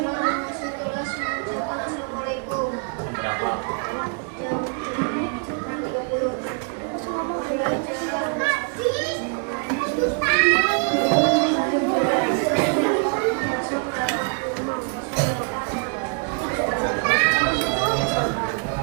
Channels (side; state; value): left; quieter; 39.6 dB